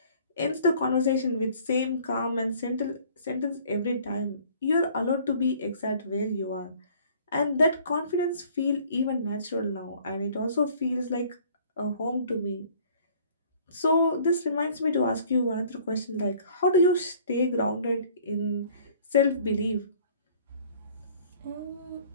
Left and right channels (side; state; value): both; inverted; correlation -0.55